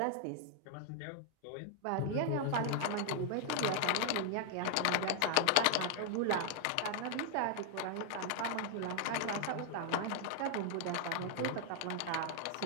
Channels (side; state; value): both; different; correlation 0.00